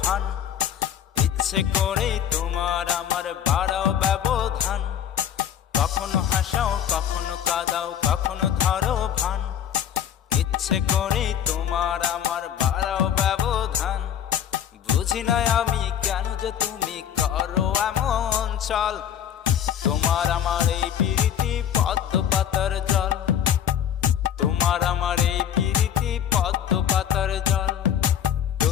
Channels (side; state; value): right; quieter; 9.5 dB